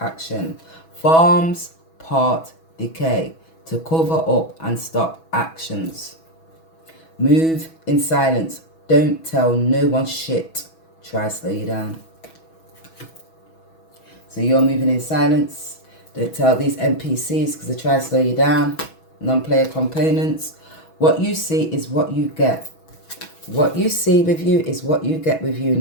Farms part decay to cover up and stop actions. Move in silence. Don't tell no one shit. Try slow you down. So you're moving in silence. Don't tell these NPCs because they try to slow you down. Non-player components. What you see is what you get. What you see with you is what you get with you.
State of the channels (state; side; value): late; right; 6.1 ms